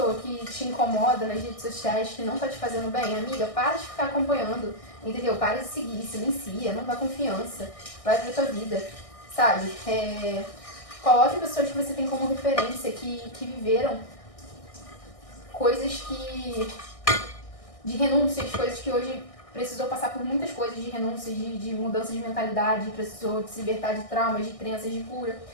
que te incomoda nas redes sociais, que não tá te fazendo bem, amiga, para de ficar acompanhando, entendeu? Para de seguir, silencia, não dá confiança, vai pra tua vida, sabe? Coloque pessoas que você tem como referência, que viveram coisas de renúncias, coisas que hoje precisou passar por muitas coisas de renúncias, de mudança de mentalidade, precisou se libertar de traumas, de crenças, de cura.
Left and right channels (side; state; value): right; late; 1.6 ms